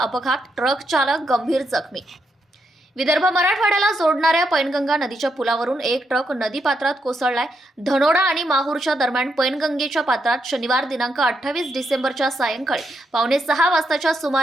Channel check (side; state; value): both; normal; correlation 0.80